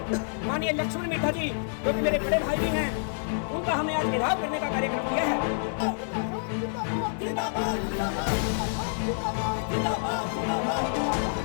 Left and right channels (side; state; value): right; silent; digital silence